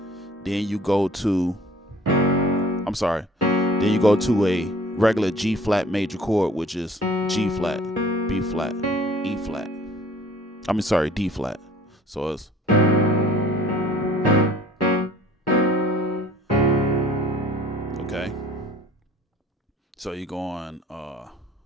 Then you go to, I'm sorry, then you go to a regular G flat major chord, which is G flat, B flat, E flat. D flat. So it's, Okay. So you're going all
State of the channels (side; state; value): both; normal; correlation 0.51